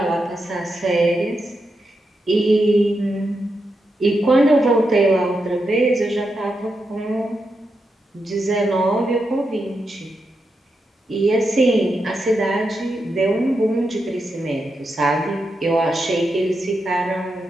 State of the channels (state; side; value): normal; both; correlation 0.86